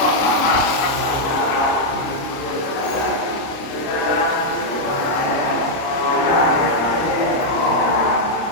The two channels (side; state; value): right; late; 29 ms